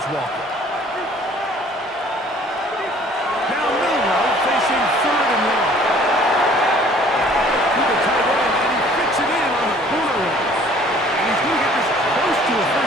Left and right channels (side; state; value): both; normal; correlation 0.54